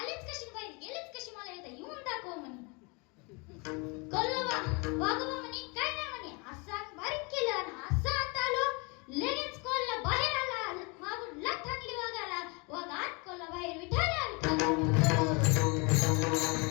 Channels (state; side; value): quieter; right; 30.6 dB